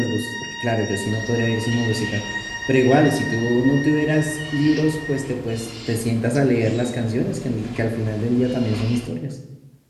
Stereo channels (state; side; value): identical; both; correlation 1.00